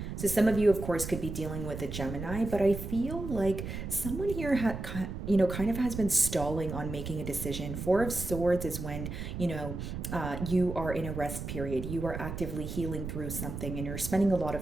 So some of you, of course, could be dealing with a Gemini, but I feel like someone here kind of has been stalling on making a decision. Four of Swords is when, you are in a rest period. You are actively healing through something and you're spending a lot of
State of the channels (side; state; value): right; noise; rumble, 6 dB below the sound